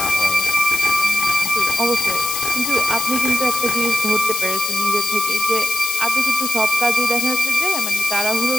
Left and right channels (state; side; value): noise; left; hiss, 2 dB below the sound